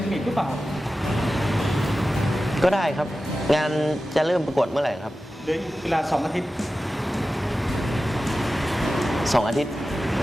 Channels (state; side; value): normal; both; correlation 0.94